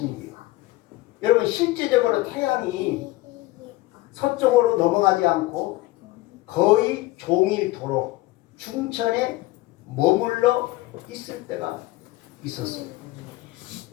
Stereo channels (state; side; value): quieter; right; 19.0 dB